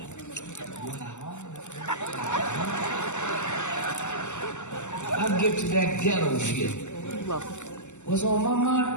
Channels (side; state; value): right; late; 0.84 ms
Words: I'll get to that ghetto shit. What's on my